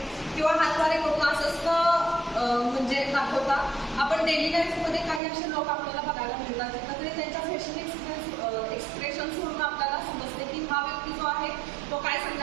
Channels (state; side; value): drops out; left; at 5.2 s